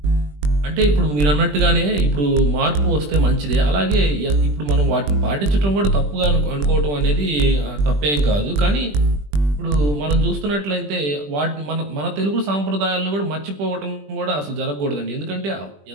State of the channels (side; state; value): left; late; 20 ms